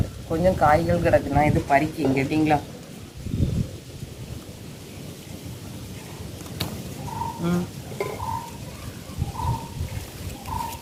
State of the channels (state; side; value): identical; both; correlation 1.00